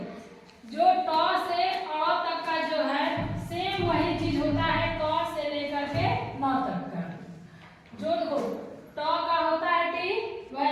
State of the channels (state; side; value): identical; both; correlation 1.00